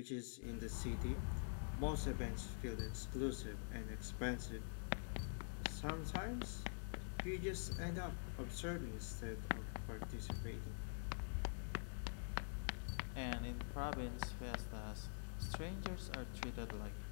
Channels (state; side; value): silent; right; digital silence